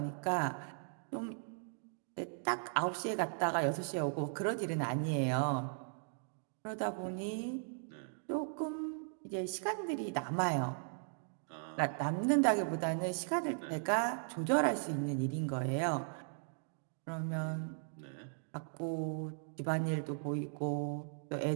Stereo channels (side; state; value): left; silent; digital silence